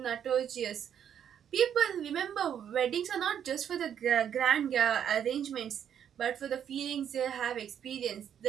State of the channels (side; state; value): left; quieter; 9.0 dB